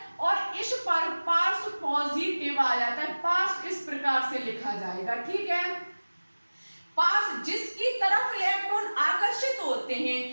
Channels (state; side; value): inverted; both; correlation -1.00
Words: और इस पर पार्श्व पॉजिटिव आ जाता है। पार्श्व इस प्रकार से लिखा जाएगा, ठीक है। पार्श्व जिसकी तरफ इलेक्ट्रॉन आकर्षित होते हैं